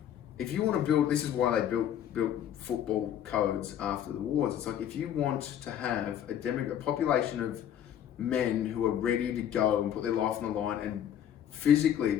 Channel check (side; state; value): right; quieter; 10.1 dB